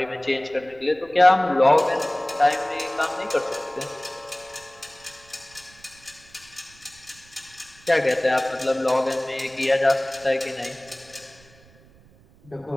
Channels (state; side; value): noise; right; rumble, 26 dB below the sound